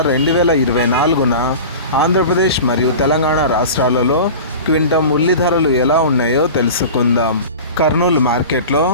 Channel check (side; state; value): both; inverted; correlation -0.34